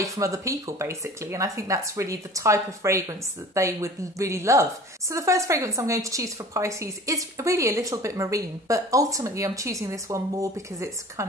from other people basically, and I think that's really the type of fragrance that they would really love. So the first fragrance I'm going to choose for Pisces is really a little bit marine, but ultimately I'm choosing this one more because it's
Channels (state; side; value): normal; both; correlation 0.42